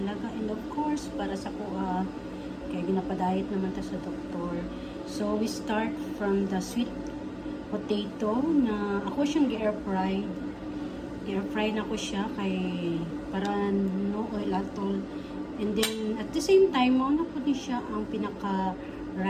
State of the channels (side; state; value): both; identical; correlation 1.00